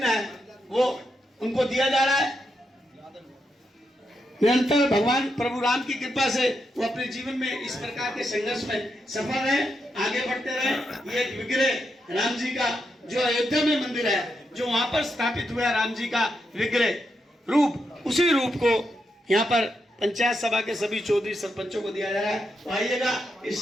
है वो उनको दिया जा रहा है। निरंतर भगवान प्रभु राम की कृपा से वो अपने जीवन में इस प्रकार के संघर्ष में सफल रहे, आगे बढ़ते रहे। ये एक विग्रह राम जी का जो अयोध्या में मंदिर है, जो वहां पर स्थापित हुआ राम जी का विग्रह रूप, उसी रूप को यहाँ पर पंचायत सभा के सभी चौधरी सरपंचों को दिया जा रहा है। तो आइएगा इस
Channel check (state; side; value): normal; both; correlation 0.83